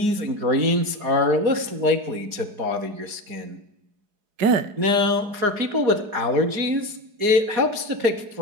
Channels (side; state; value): left; late; 4.8 ms